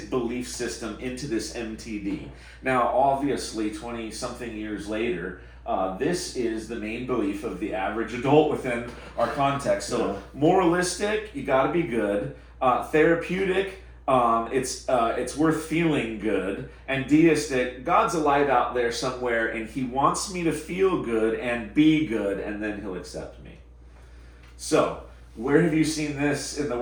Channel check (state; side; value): identical; both; correlation 1.00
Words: belief system into this MTD. Now, obviously, 20-something years later, this is the main belief of the average adult within our context. So, moralistic, you got to be good. Therapeutic, it's worth feeling good. And deistic, God's alive out there somewhere, and He wants me to feel good and be good, and then He'll accept me. So, where have you seen this in the